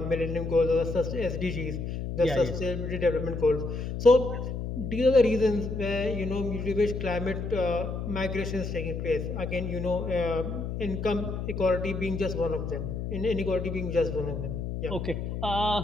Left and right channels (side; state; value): left; noise; hum, 4 dB below the sound